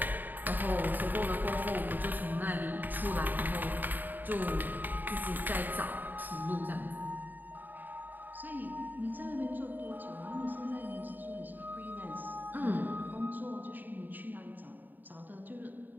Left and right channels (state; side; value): late; left; 0.088 ms